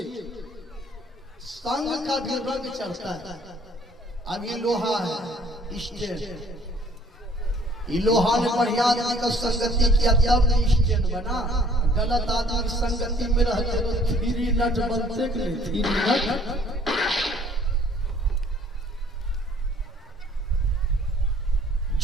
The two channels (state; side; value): normal; both; correlation 0.58